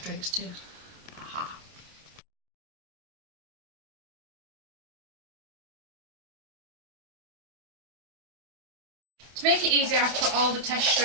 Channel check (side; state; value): left; late; 27 ms